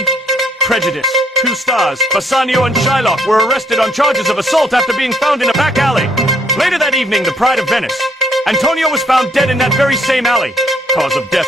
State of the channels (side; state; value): both; normal; correlation 0.66